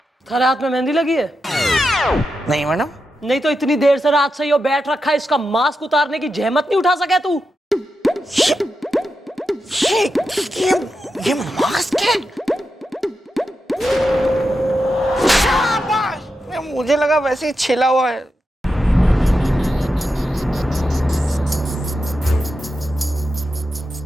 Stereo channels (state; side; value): normal; both; correlation 0.88